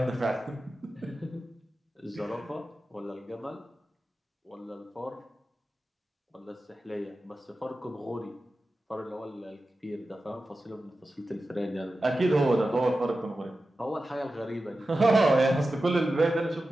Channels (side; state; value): both; normal; correlation 0.93